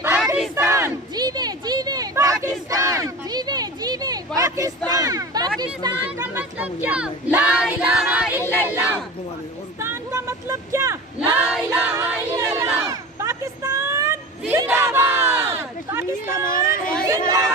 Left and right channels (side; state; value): both; normal; correlation 0.33